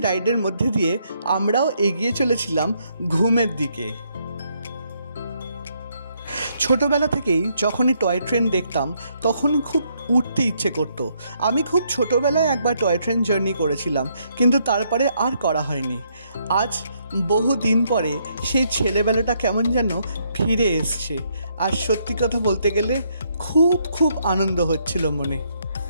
রাইডের মধ্যে দিয়ে আমরাও এগিয়ে চলেছিলাম ঘুমের দিকে। ছোটোবেলা থেকেই যখনই টয় ট্রেন দেখতাম তখনই খুব উঠতে ইচ্ছে করতো। আমি খুব ছোটোবেলায় একবার টয় ট্রেন জার্নি করেছিলাম, কিন্তু তারপরে আর করা হয়নি। আজ বহু দিন পরে সেই ছেলেবেলাটা কেমন যেন ফিরে এসছে, আর সত্যি কথা বলতে গেলে খুব আনন্দ হচ্ছিল মনে।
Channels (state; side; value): inverted; both; correlation -0.73